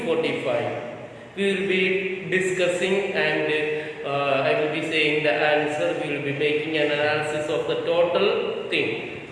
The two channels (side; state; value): both; identical; correlation 1.00